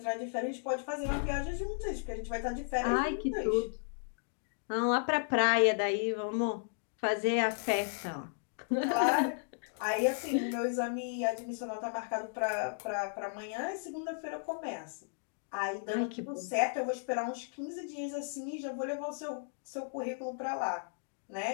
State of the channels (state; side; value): silent; right; digital silence